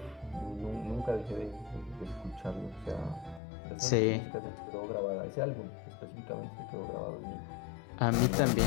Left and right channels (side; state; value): right; drops out; at 3.4 s